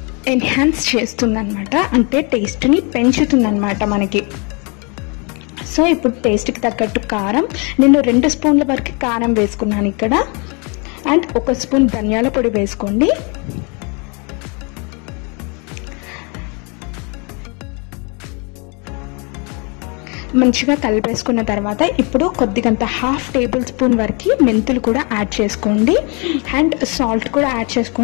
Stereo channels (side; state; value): right; quieter; 32.7 dB